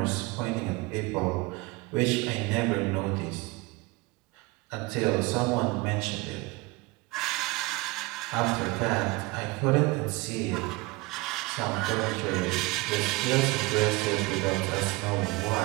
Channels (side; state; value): left; quieter; 23.2 dB